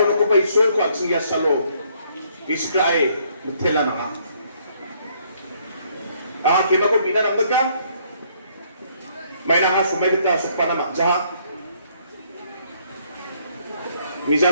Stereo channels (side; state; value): both; inverted; correlation -0.67